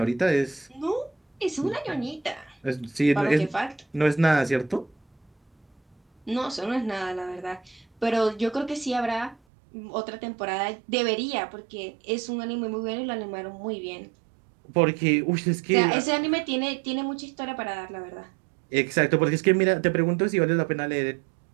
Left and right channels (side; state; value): left; drops out; at 9.3 s